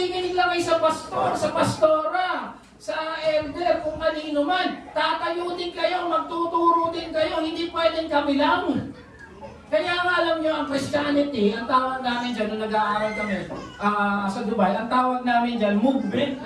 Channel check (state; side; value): identical; both; correlation 1.00